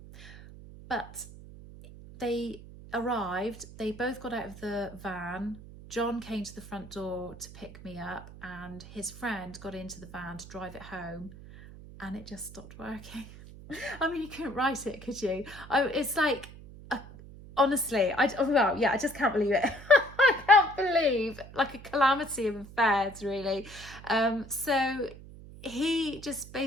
But they arrived, they both got out of the van. John came to the front door to pick me up, and his friend got into the van to drive it home, and it just stopped working. I mean, you couldn't write it, could you? It's like, honestly, I just can't believe it. I can't believe, like, a calamity of affairs, really. So he just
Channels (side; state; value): right; noise; hum, 16 dB below the sound